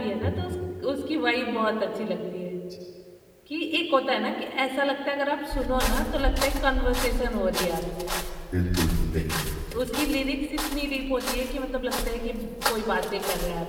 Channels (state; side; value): identical; both; correlation 1.00